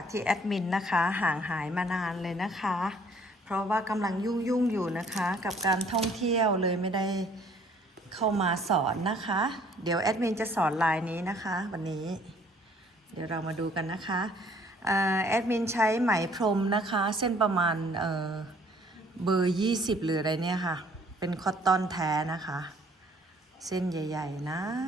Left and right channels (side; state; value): both; normal; correlation 0.59